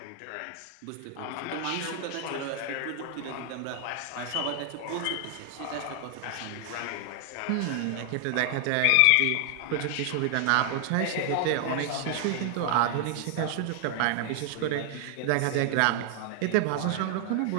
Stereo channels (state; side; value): different; both; correlation 0.00